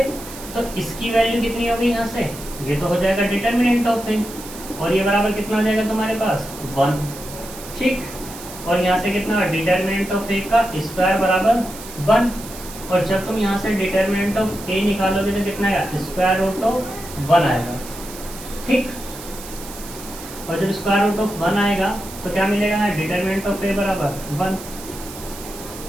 तो इसकी वैल्यू कितनी होगी यहाँ से, ये तो हो जाएगा डिटरमिनेंट ऑफ ए, और ये बराबर कितना आ जाएगा तुम्हारे पास, 1। ठीक, और यहाँ से कितना, डिटरमिनेंट ऑफ ए का स्क्वायर बराबर 1, और जब तुम यहाँ से डिटरमिनेंट ऑफ ए निकालोगे तो कितना आएगा, स्क्वायर रूट ऑफ 1 आएगा। ठीक, और जब स्क्वायर रूट ऑफ 1 आएगा तो क्या मिलेगा, डिटरमिनेंट ऑफ ए बराबर 1।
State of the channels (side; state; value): right; noise; hiss, 14 dB below the sound